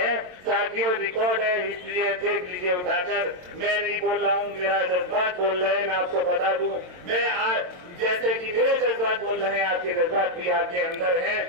साथियों, रिकॉर्ड है, हिस्ट्री है, देख लीजिए उठाकर। मैं नहीं बोल रहा हूँ, मेरा जज्बात बोल रहे हैं। मैं आपको बता दूं, मैं आज जैसे कि मेरे जज्बात बोल रहे हैं, आपके जज्बात भी आपके अंदर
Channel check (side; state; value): left; late; 22 ms